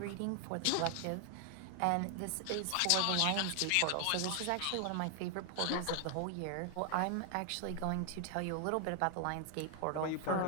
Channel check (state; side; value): different; both; correlation 0.00